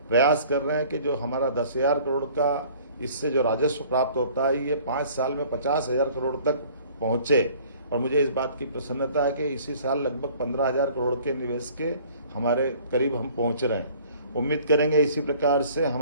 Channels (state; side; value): inverted; both; correlation -0.53